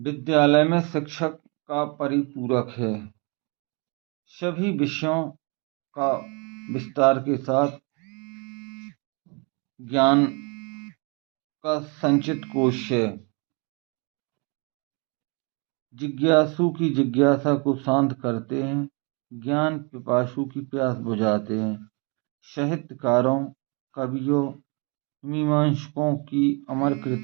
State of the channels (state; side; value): quieter; left; 32.9 dB